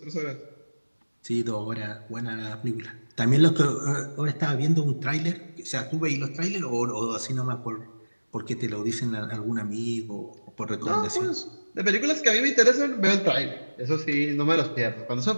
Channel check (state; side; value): inverted; both; correlation -1.00